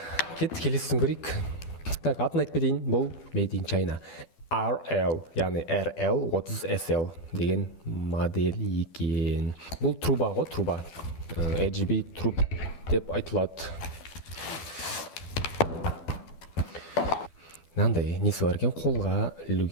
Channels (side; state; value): right; late; 12 ms